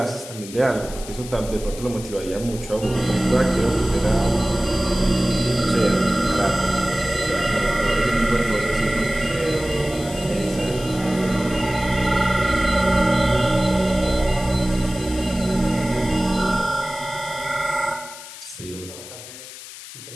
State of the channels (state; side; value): noise; left; hiss, 14 dB below the sound